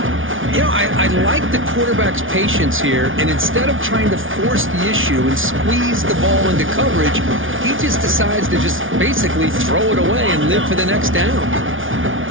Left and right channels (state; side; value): late; left; 0.57 ms